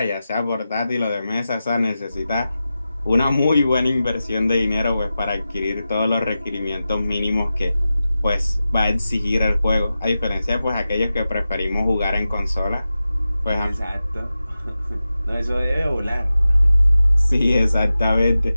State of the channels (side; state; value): both; inverted; correlation -0.93